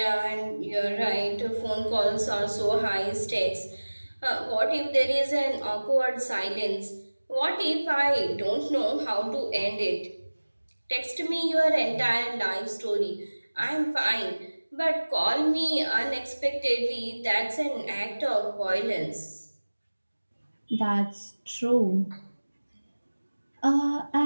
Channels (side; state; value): both; inverted; correlation -1.00